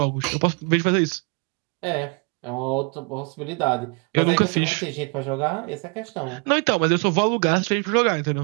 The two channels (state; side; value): quieter; left; 33.7 dB